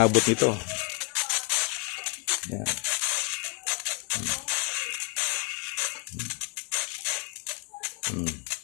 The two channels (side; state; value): right; quieter; 30.3 dB